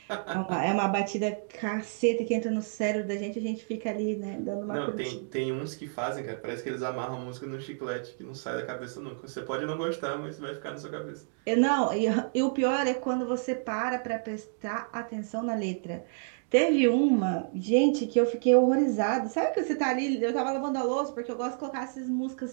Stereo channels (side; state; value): left; silent; digital silence